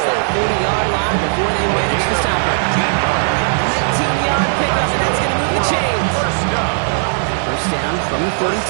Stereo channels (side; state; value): left; silent; digital silence